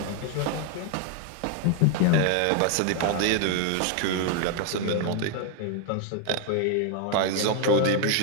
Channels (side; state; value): both; different; correlation 0.01